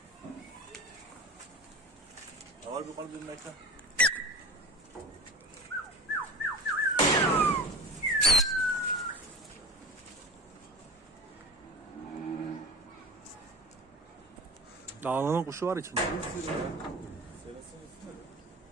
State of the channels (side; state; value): both; normal; correlation 0.33